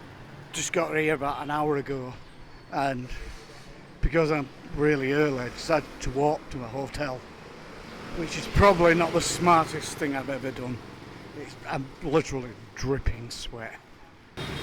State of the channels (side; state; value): both; identical; correlation 1.00